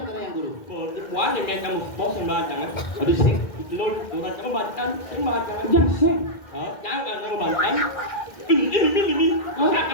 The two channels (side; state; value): right; late; 1.8 ms